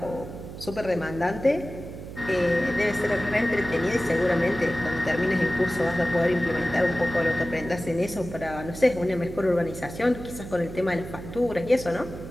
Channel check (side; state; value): right; noise; hum, 11 dB below the sound